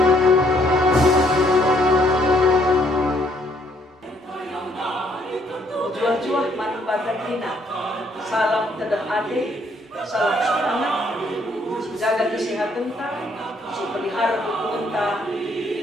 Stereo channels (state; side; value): normal; both; correlation 0.67